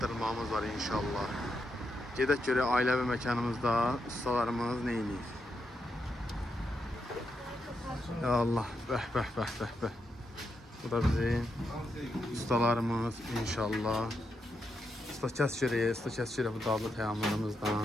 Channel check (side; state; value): both; normal; correlation 0.83